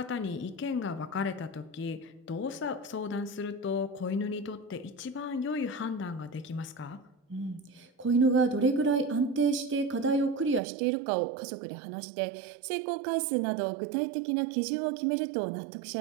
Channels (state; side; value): drops out; left; at 10.6 s